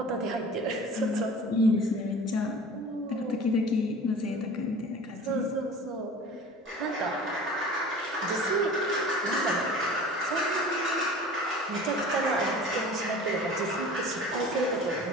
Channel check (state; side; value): normal; both; correlation 0.41